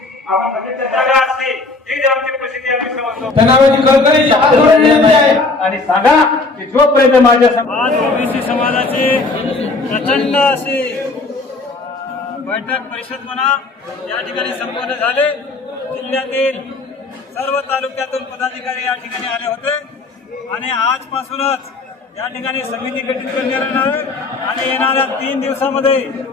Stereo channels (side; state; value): right; quieter; 3.5 dB